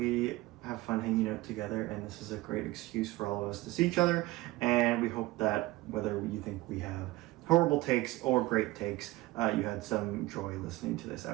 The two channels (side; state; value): left; quieter; 19.1 dB